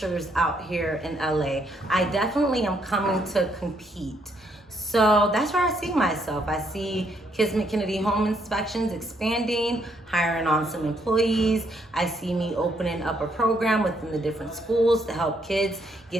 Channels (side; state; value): both; normal; correlation 0.72